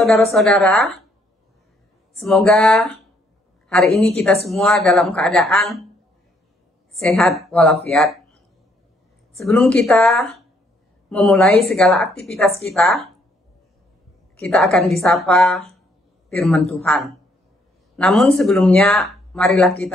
semoga hari ini kita semua dalam keadaan sehat walafiat. Sebelum kita memulai segala aktivitas kita akan disapa firman Tuhan. Namun sebelumnya, marilah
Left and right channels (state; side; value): normal; both; correlation 0.69